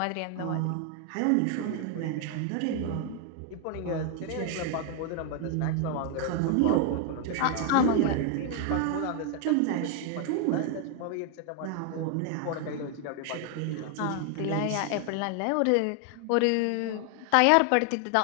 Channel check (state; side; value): different; both; correlation 0.00